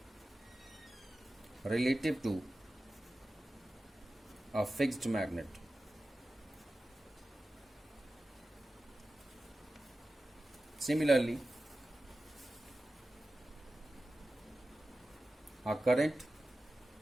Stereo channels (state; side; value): normal; both; correlation 0.94